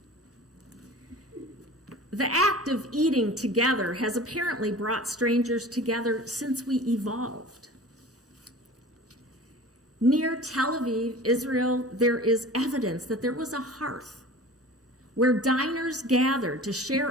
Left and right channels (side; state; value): both; normal; correlation 0.39